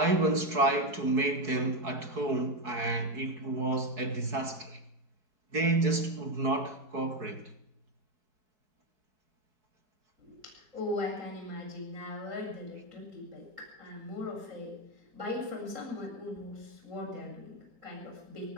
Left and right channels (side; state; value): left; late; 4.7 ms